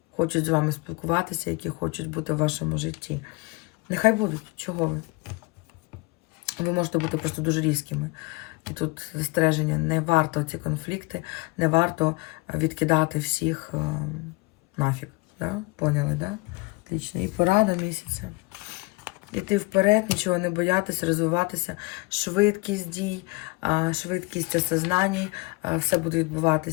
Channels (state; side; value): quieter; right; 25.7 dB